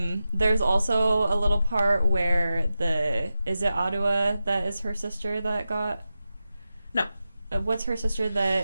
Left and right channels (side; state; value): both; inverted; correlation -0.91